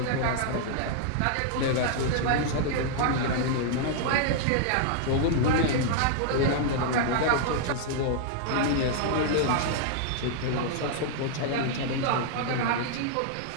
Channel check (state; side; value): different; both; correlation -0.01